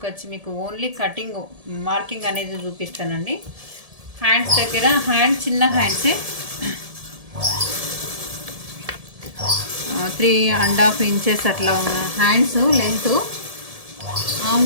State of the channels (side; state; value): left; late; 1.7 ms